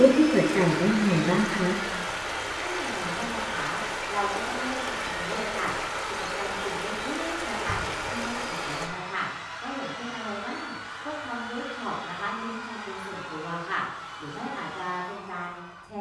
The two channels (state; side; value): identical; both; correlation 1.00